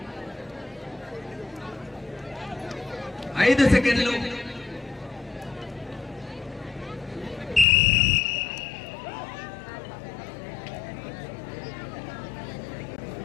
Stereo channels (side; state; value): right; drops out; at 7.7 s